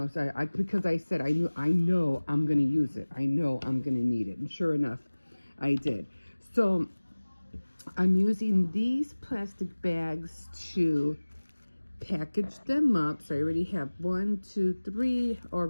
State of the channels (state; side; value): inverted; both; correlation -1.00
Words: so because I said, I know I'm going to use it. I know I'm going to need it. And sure enough, I did. So I'm using these plastic bags to package them up. So I already have 1, 2, 3